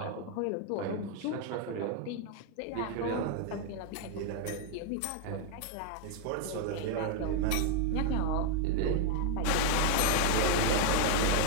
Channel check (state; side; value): different; both; correlation 0.00